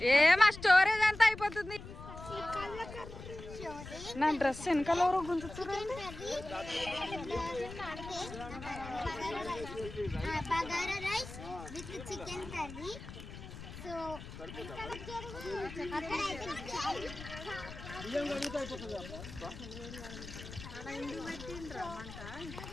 ఏమా స్టోరేజ్ అంతా అయిపోతుంది. showing నా డ్రెస్ వెనకాల ఎవరో గుంజుతున్నారు. Bagara rice with chicken curry. So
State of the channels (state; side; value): noise; left; rumble, 12 dB below the sound